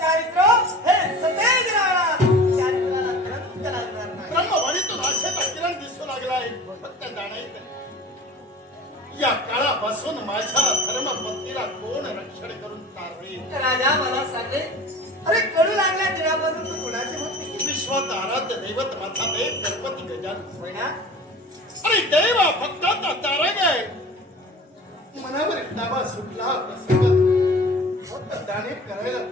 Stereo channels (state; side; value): normal; both; correlation 0.40